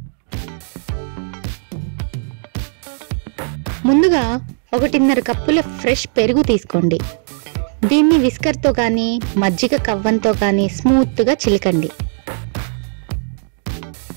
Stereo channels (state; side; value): silent; left; digital silence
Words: ముందుగా 1.5 కప్పుల ఫ్రెష్ పెరుగు తీసుకోండి. దీన్ని విస్కర్తో కానీ మజ్జిగ కవ్వంతో కానీ స్మూత్గా చిలకండి.